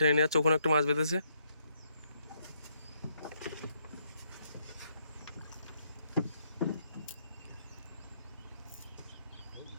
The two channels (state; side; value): inverted; both; correlation -0.74